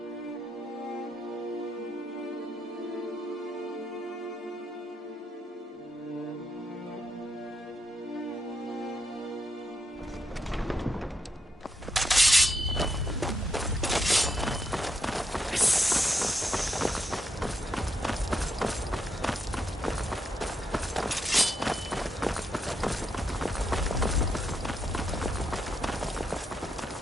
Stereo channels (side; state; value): both; normal; correlation 0.80